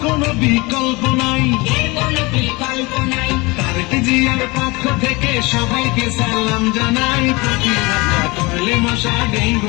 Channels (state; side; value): quieter; right; 24.6 dB